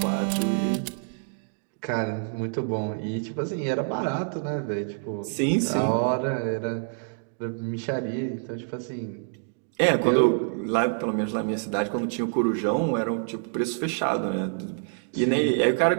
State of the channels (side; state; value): left; silent; digital silence